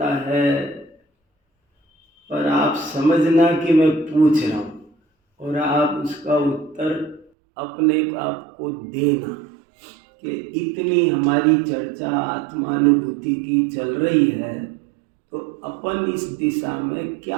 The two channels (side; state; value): left; drops out; at 7.3 s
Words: है। पर आप समझना कि मैं पूछ रहा हूँ और आप उसका उत्तर अपने आप को देना कि इतनी हमारी चर्चा आत्मानुभूति की चल रही है तो अपन इस दिशा में क्या